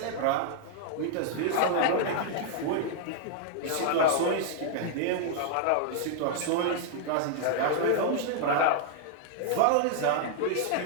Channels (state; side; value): different; both; correlation -0.01